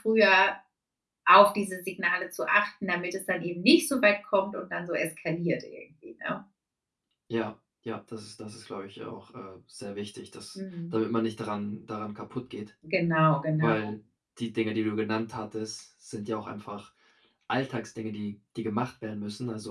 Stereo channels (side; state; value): both; identical; correlation 1.00